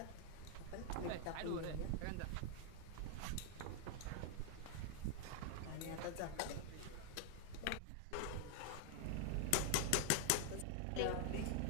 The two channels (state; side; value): different; both; correlation 0.00